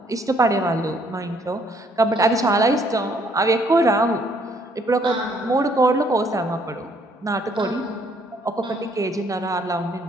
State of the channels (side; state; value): both; normal; correlation 0.66